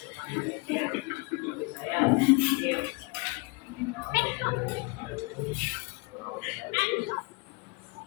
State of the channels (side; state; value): right; quieter; 28.4 dB